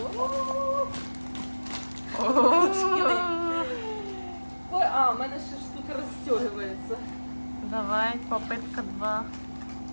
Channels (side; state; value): both; inverted; correlation -1.00